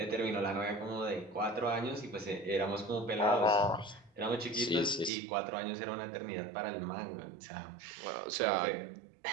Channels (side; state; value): left; drops out; at 5.1 s